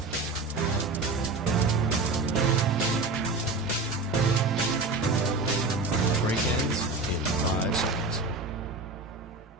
Break ends in 5 seconds.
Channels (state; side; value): quieter; left; 3.3 dB